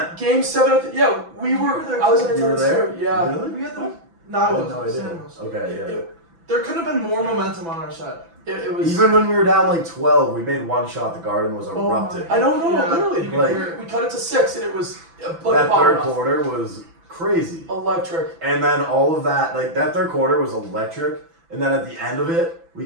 Game 7, yeah, we were. were there I was in too. You were attendance there? too. Yeah. Really? We had the. No, I I had wasn't. no idea. Sam was. Okay, yeah. There could have been more momentum on our side. It was. Even when we were down like 12, we made one shot. The Garden was my- erupting. I know, Yeah, literally. you could Like- hear it. We cut it to 6, and it was like That a bomb third off. quarter was crazy. Electric. And then all of that, like that third quarter was electric. And then at the end of it, we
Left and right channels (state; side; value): late; left; 6.0 ms